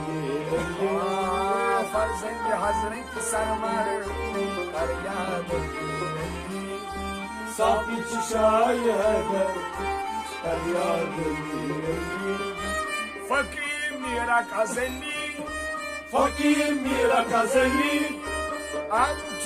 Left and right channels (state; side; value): identical; both; correlation 1.00